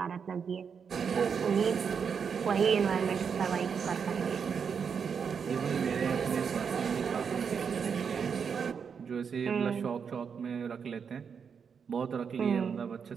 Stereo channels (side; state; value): left; quieter; 6.5 dB